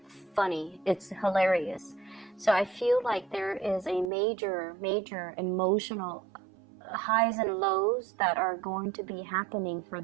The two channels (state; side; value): drops out; left; at 4.1 s